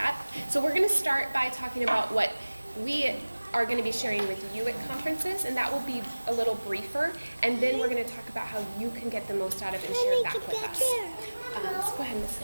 So we're going to start by talking about what we are going to be sharing with you at conferences, and that will be a little briefer, and then we're going to talk about how you can get the most out of it and share it back with us. So go ahead, Ms.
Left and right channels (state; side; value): inverted; both; correlation -1.00